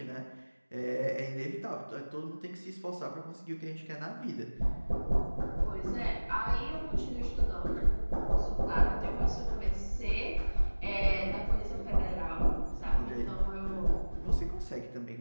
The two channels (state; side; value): inverted; both; correlation -1.00